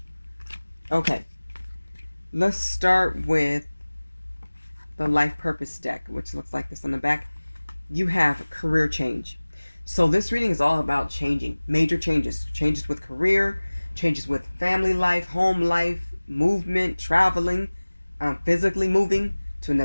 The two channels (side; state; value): both; inverted; correlation -1.00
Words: Okay, let's start with the life purpose deck, which looks like this on the back. You have career change. So this reading is all about changing, major changes. Changes with career, changes with family life, home life, movement, traveling, physically moving to